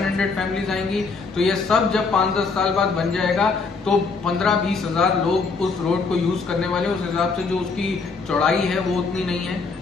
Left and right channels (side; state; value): right; quieter; 4.4 dB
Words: फैमिलीज आएंगी। तो ये सब जब 5-10 साल बाद बन जाएगा तो 15-20 हजार लोग उस रोड को यूज करने वाले, उस हिसाब से जो उसकी चौड़ाई है वो उतनी नहीं है